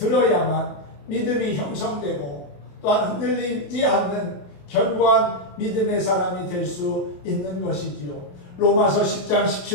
믿음이 형성되고 또한 흔들리지 않는 견고한 믿음의 사람이 될 수 있는 것이지요. 로마서 10장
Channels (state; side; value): late; right; 28 ms